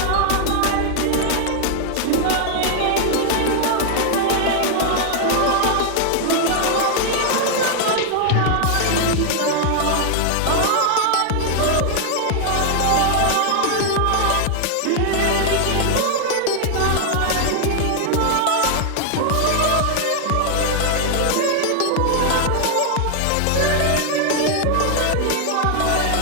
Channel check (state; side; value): different; both; correlation 0.00